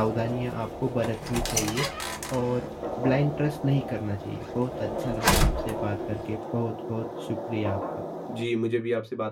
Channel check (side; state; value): both; identical; correlation 1.00